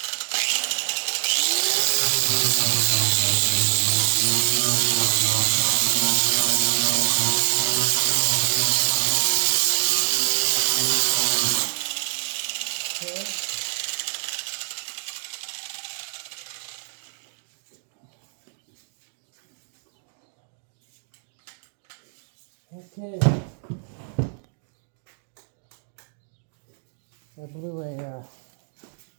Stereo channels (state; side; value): silent; left; digital silence